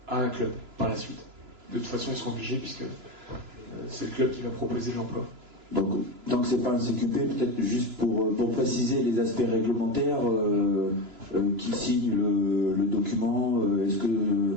à un club par la suite. De toute façon, ils seront obligés puisque c'est le club qui va proposer l'emploi. Donc c'est pas un CQP, peut-être juste pour préciser les aspects réglementaires, qui signe le document, est-ce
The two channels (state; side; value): late; left; 3.0 ms